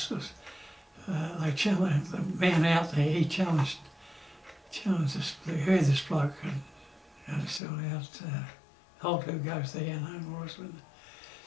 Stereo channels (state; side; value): drops out; right; at 7.6 s